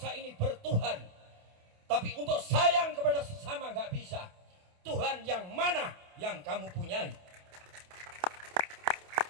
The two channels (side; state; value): left; late; 28 ms